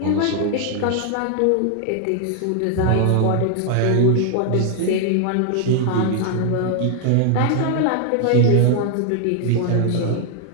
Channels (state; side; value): different; both; correlation 0.00